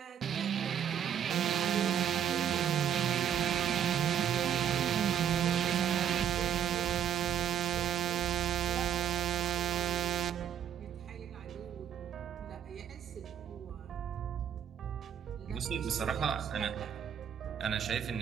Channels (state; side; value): quieter; left; 9.2 dB